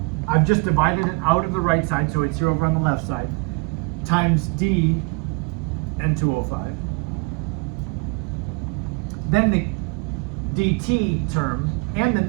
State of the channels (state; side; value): quieter; left; 29.6 dB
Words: I've just divided it out of the right side, so it's here over on the left side, times d N2O5. Then the dt term and the